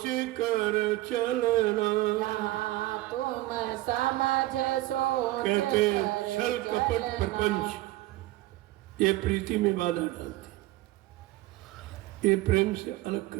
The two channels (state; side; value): quieter; left; 17.6 dB